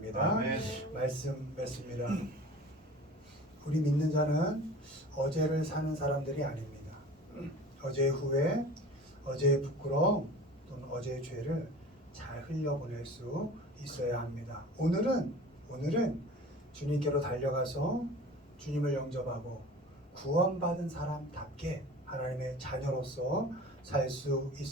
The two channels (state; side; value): normal; both; correlation 0.40